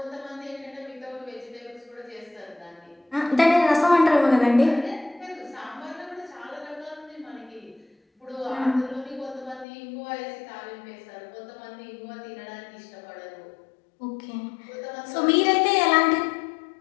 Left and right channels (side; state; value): right; drops out; at 9.7 s